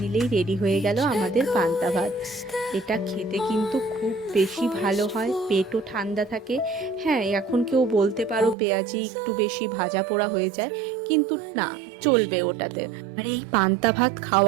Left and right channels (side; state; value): left; drops out; at 8.6 s